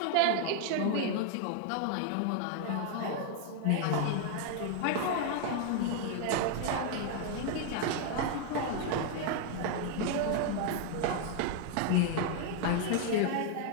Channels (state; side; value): different; both; correlation 0.00